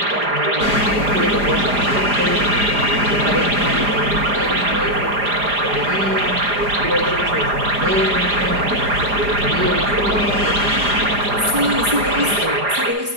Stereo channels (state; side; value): late; left; 4.9 ms